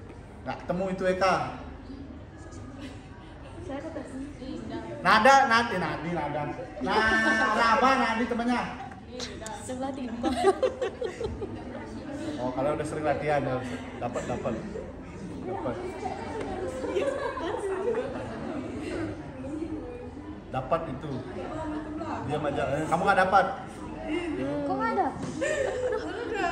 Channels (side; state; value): both; identical; correlation 1.00